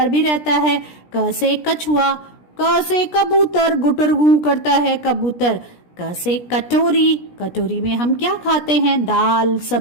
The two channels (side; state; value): right; late; 17 ms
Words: भी रहता है। क से कछुआ। क से कबूतर, गुटर गू करता है कबूतर। क से कटोरी। कटोरी में हम क्या खाते हैं? दाल